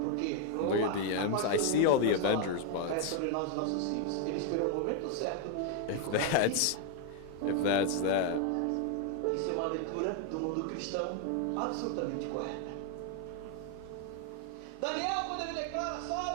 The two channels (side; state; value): both; different; correlation 0.00